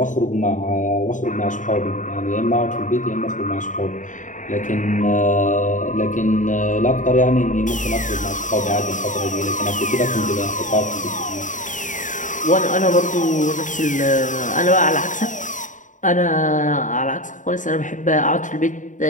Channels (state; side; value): late; right; 0.37 ms